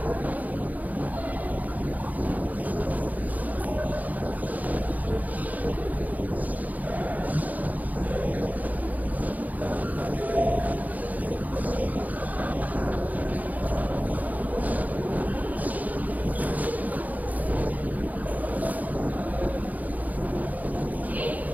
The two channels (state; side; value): late; left; 0.079 ms